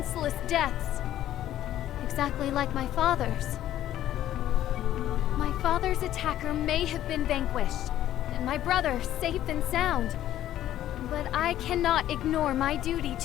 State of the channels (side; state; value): right; quieter; 12.6 dB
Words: deaths. Exactly like my father's. My father's attacker may have been vanquished, and my brother safe and sound. But I cannot ignore my duty